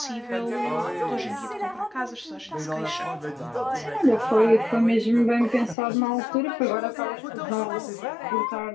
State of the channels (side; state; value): right; drops out; at 5.8 s